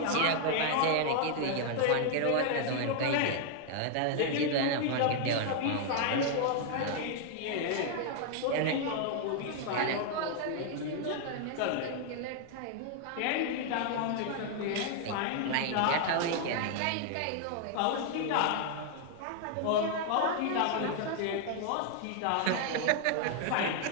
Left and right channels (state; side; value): different; both; correlation 0.00